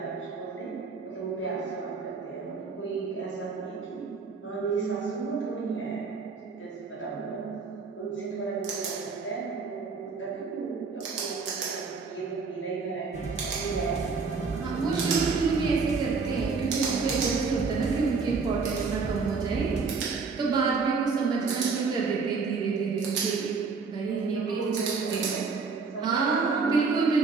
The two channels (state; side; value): quieter; left; 4.7 dB